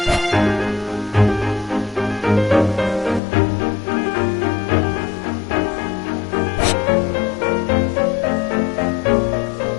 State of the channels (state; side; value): drops out; right; at 3.2 s